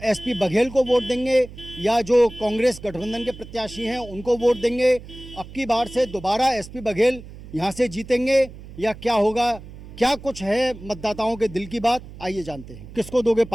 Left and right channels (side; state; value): right; noise; hum, 16 dB below the sound